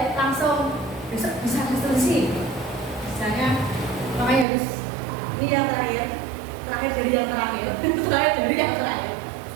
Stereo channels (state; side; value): drops out; left; at 4.5 s